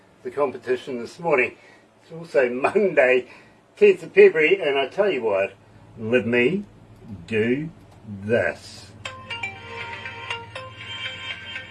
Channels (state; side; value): identical; both; correlation 1.00